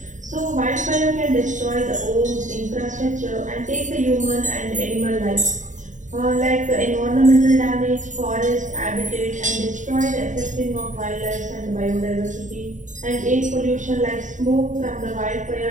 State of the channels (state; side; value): late; left; 0.36 ms